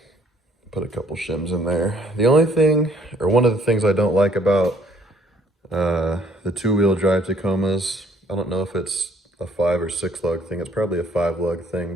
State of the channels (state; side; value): normal; both; correlation 0.62